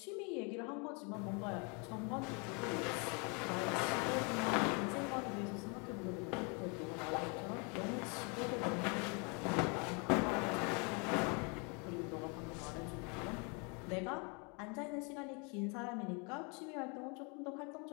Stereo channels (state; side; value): quieter; right; 33.1 dB